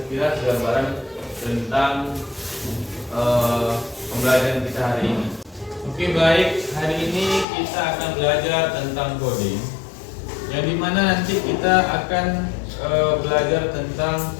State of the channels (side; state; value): right; drops out; at 7.5 s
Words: gambaran tentang pembelajaran kita hari ini. Oke baik, hari ini kita akan belajar tentang coding, yang dimana nanti kita akan belajar tentang